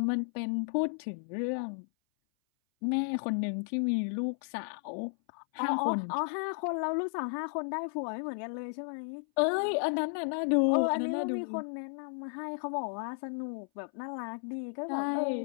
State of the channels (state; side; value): silent; right; 56 dB below the other